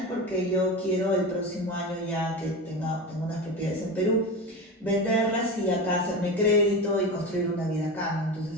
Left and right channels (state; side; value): normal; both; correlation 0.25